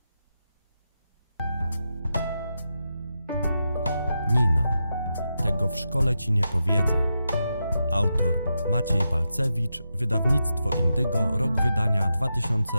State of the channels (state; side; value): inverted; both; correlation -0.87